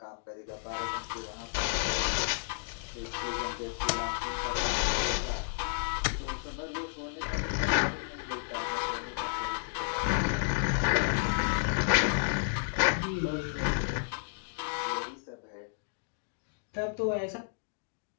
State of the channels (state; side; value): silent; right; digital silence